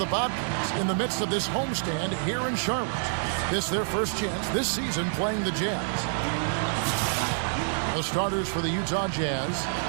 Bobcats in the midst of this homestand here in Charlotte. This is their first chance this season playing the Jazz. The starters for the Utah Jazz.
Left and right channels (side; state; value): left; silent; digital silence